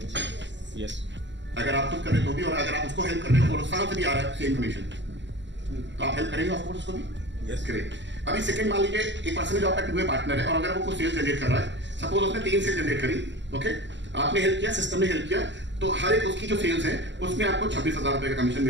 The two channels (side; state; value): left; late; 0.53 ms